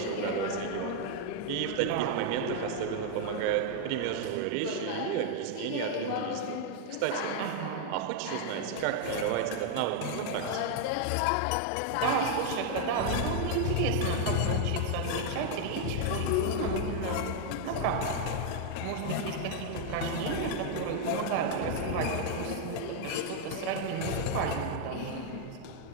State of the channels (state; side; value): different; both; correlation 0.00